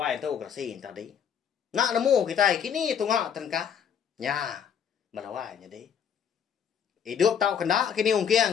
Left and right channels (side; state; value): right; quieter; 8.0 dB